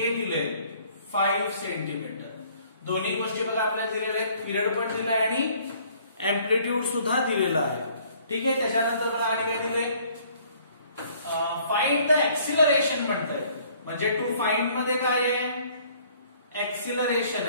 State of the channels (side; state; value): both; inverted; correlation -0.59